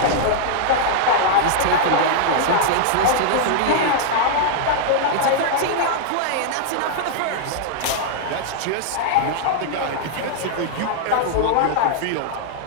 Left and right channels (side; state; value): both; different; correlation -0.01